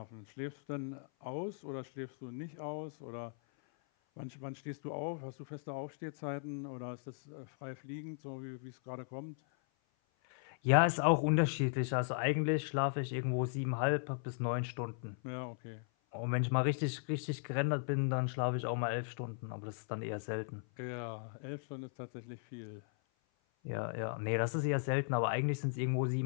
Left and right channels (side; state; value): right; silent; 53 dB below the other